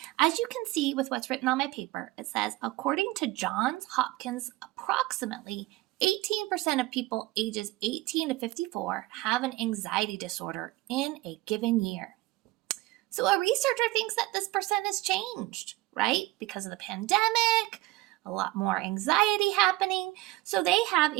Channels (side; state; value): left; quieter; 18.9 dB